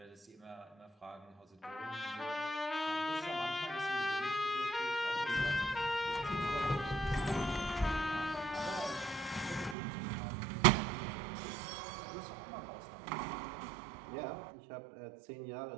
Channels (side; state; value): left; drops out; at 9.8 s